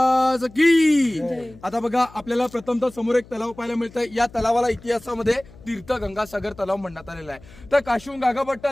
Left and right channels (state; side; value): noise; left; hum, 22 dB below the sound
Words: की. आता बघा, आपल्याला प्रथमतः समोर एक तलाव पाहायला मिळतंय. या तलावाला इतिहासामध्ये तीर्थ गंगासागर तलाव म्हणण्यात आलेला आहे. तर काशीहून गागाभट्ट